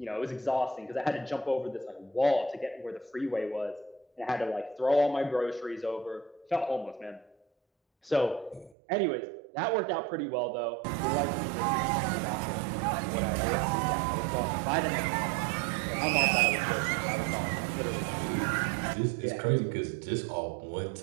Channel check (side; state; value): left; drops out; at 8.8 s